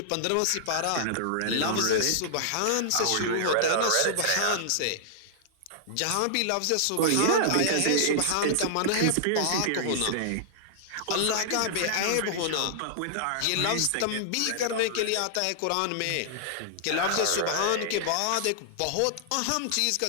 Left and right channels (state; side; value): different; both; correlation -0.01